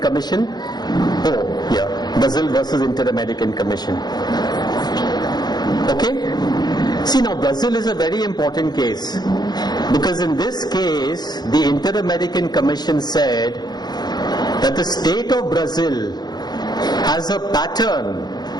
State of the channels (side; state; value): right; late; 0.20 ms